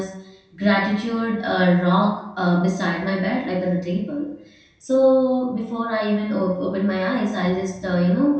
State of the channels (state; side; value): identical; both; correlation 1.00